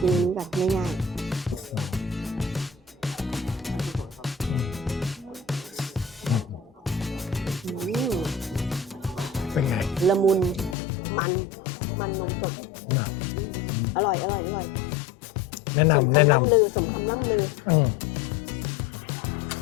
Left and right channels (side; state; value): right; drops out; at 10.8 s